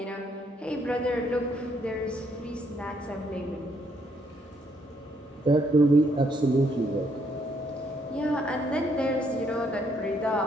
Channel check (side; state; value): both; normal; correlation 0.71